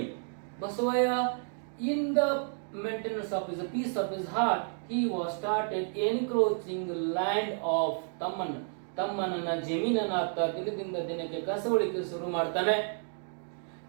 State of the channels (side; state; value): left; silent; 57 dB below the other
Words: Basavaya, in the maintenance of his peace of his heart, he was started encroaching the land of ತಮ್ಮನನ್ನ ಜಮೀನನ್ನ ದಿನದಿಂದ ದಿನಕ್ಕೆ ಕಸವಳಿಕೆ ಶುರು ಮಾಡ್ತಾನೆ.